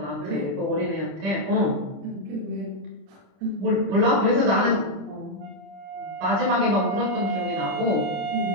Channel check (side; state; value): left; late; 30 ms